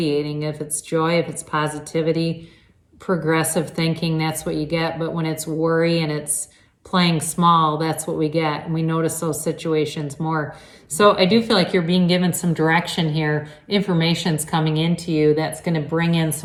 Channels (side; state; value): both; identical; correlation 1.00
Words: If it's joy, if it's positivity, progressive thinking, that's what you get. But when it's worry and it's playing small, that's what we get. And we notice those situations more. So I do feel like you're being given some direction here. Information's coming into you that's going to bring in